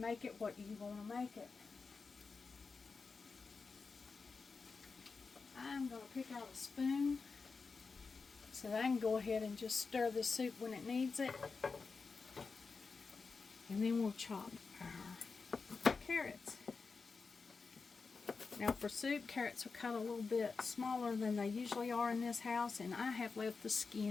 it what you want to make it. I'm going to pick out a spoon so that I can go ahead and just stir the soup when it needs it. And then we'll chop our carrots. Now for soup, carrots are cut a little bit smaller than they usually are in this house, and I have left the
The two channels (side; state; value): right; quieter; 4.7 dB